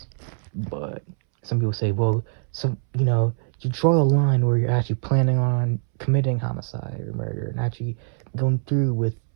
but some people say, well, you draw a line where you're actually planning on committing homicide or murder and actually going through with,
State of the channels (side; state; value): left; silent; 63 dB below the other